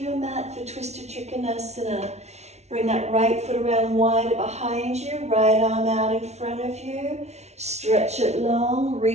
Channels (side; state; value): left; late; 0.32 ms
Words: mat for Twisted Trikonasana. Bring that right foot around wider behind you, right arm out in front of you. Stretch it long,